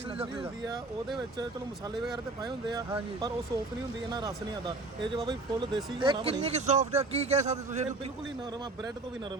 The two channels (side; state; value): left; quieter; 3.2 dB